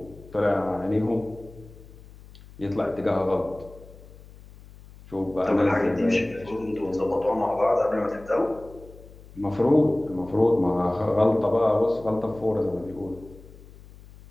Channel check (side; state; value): left; noise; hum, 20 dB below the sound